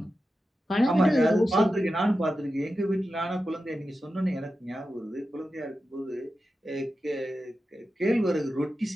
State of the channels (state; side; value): normal; both; correlation 0.91